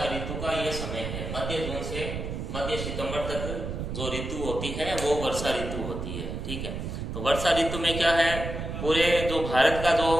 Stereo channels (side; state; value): right; noise; rumble, 5 dB below the sound